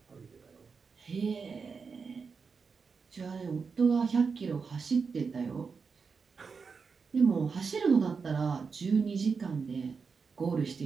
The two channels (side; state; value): left; quieter; 5.3 dB